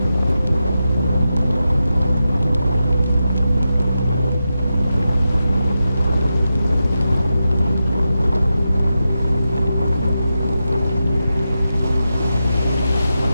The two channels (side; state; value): both; inverted; correlation -0.89